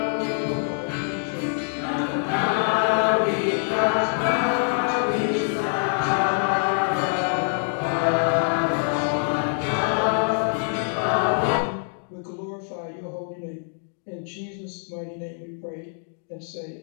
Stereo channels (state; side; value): silent; right; digital silence